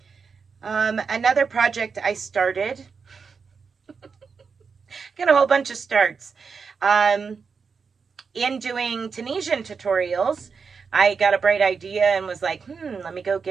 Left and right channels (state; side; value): quieter; left; 5.5 dB